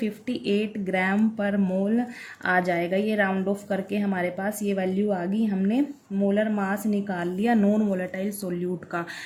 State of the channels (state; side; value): identical; both; correlation 1.00